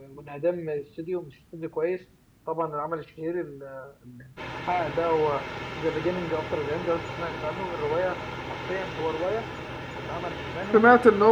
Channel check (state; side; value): identical; both; correlation 1.00